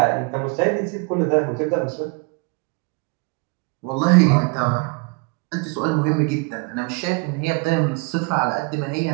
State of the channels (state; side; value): quieter; left; 29.4 dB